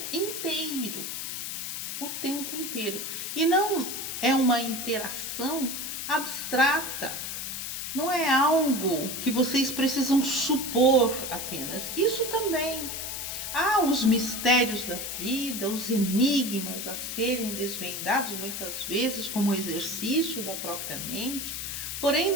inteiro. O tempo inteiro. E não é uma interação abstrata. Não é algo que vocês precisam supor apenas. Isso também. Há os mistérios da vida, os enigmas a serem desvendados muitas vezes como exercício da própria mente. Porém,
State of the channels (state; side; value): noise; left; hiss, 5 dB below the sound